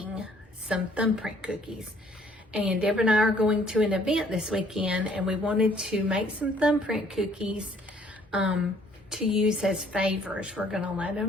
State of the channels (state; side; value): normal; both; correlation 0.61